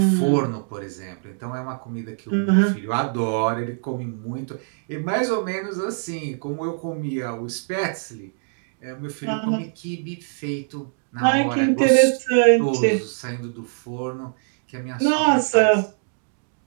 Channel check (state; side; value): silent; left; digital silence